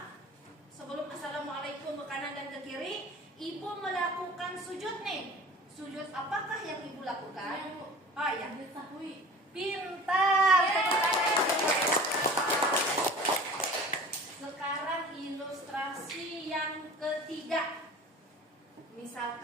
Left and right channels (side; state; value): both; normal; correlation 0.40